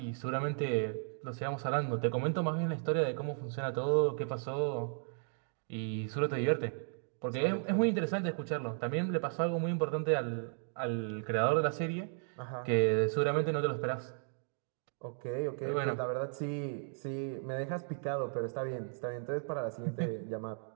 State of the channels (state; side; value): silent; left; 54 dB below the other